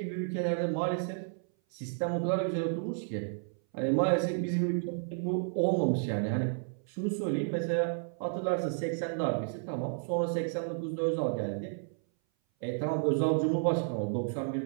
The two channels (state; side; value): silent; left; 57 dB below the other